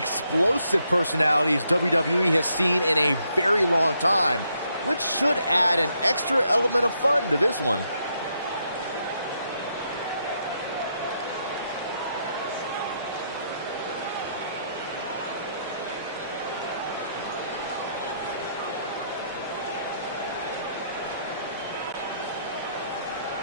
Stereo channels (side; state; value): both; inverted; correlation -0.76